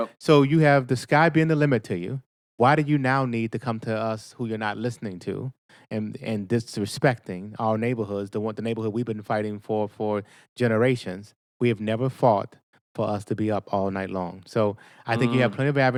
So you have the sky being the limit to you. Why do you now need to come to us who you're not listening to and disrespecting our neighborhoods, the neighborhood we've been fighting for generations? We have never fought for us to be up all night long. So I think you have plenty of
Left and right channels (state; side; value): identical; both; correlation 1.00